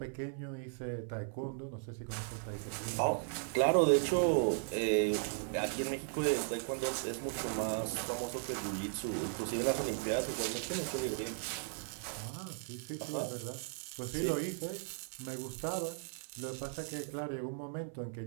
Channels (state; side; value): silent; left; 53 dB below the other